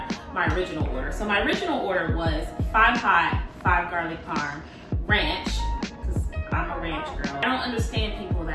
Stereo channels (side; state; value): both; identical; correlation 1.00